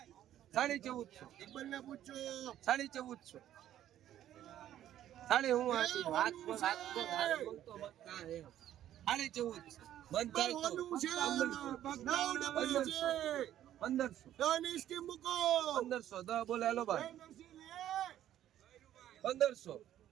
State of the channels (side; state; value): left; quieter; 11.9 dB